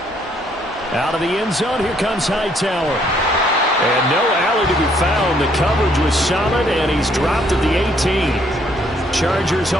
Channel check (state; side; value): normal; both; correlation 0.68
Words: Out of the end zone, here comes Hightower. And no alley to be found. The coverage was solid, and he's dropped at the 18. Chargers